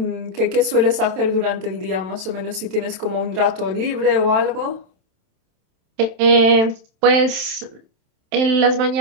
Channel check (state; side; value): late; left; 27 ms